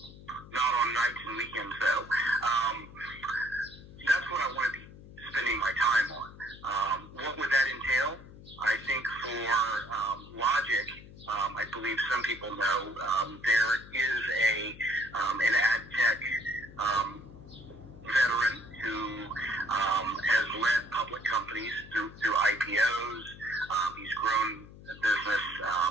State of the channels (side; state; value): left; noise; hum, 18 dB below the sound